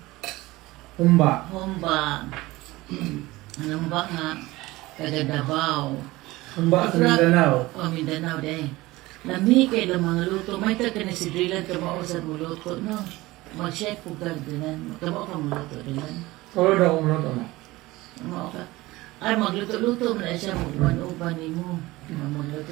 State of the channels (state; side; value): quieter; left; 19.5 dB